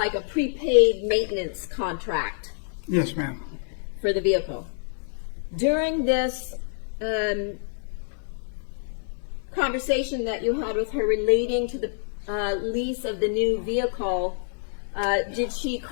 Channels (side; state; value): right; silent; digital silence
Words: a prepaid maintenance contract Yes, ma'am. for the vehicle? During this conversation that you had with her relating to the lease of the new vehicle, did she